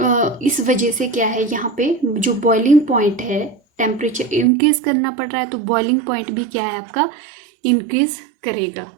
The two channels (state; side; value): drops out; left; at 4.5 s